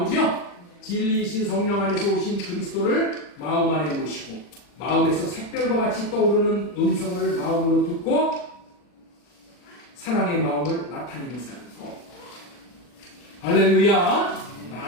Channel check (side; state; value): right; late; 40 ms